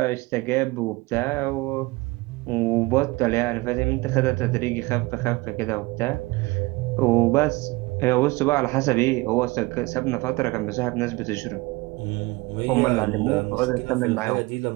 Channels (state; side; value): quieter; left; 22.5 dB